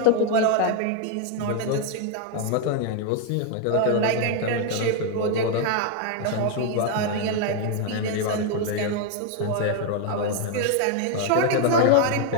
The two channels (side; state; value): both; different; correlation 0.00